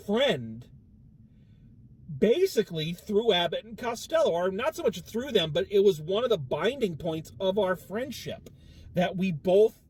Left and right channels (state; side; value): identical; both; correlation 1.00